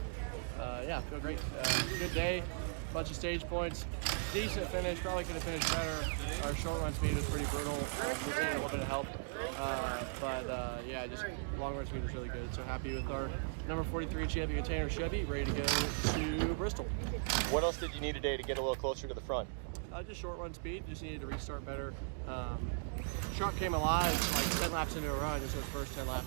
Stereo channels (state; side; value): silent; left; digital silence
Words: feel great. Good day, bunch of stage points. Decent finish, probably could have finished better. Our short run speed was pretty brutal. We needed a little bit of help. Yeah, just long run speed was really good. So happy with our number 43 champion container Chevy, ready to go to Bristol. What else did you need today to get a little closer to the front? Just short run speed, just needed to restart better. Truck came alive like 10 laps into a run, just those first 10